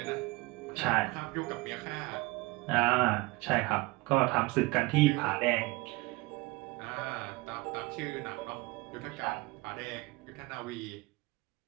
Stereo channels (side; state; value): left; quieter; 22.9 dB